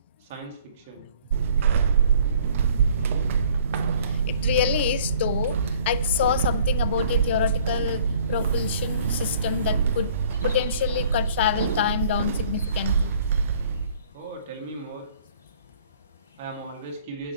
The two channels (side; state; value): both; inverted; correlation -0.55